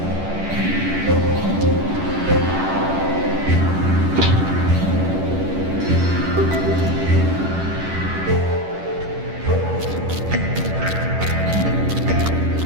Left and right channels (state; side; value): late; left; 11 ms